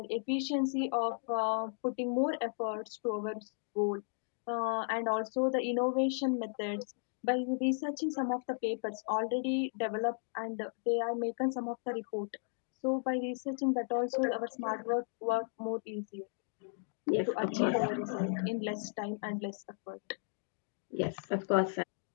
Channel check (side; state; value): right; silent; digital silence